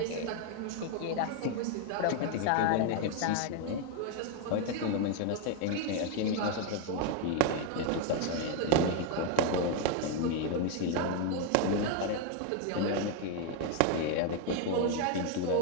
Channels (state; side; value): different; both; correlation 0.01